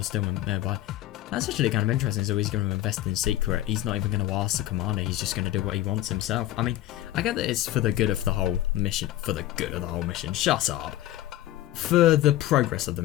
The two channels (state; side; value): quieter; right; 14.3 dB